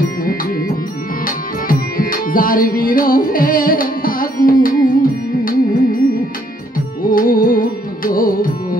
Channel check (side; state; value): both; normal; correlation 0.68